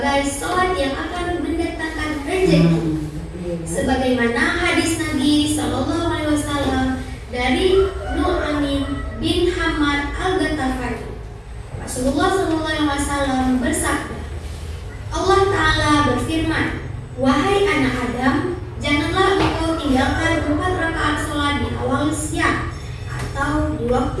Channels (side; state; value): both; identical; correlation 1.00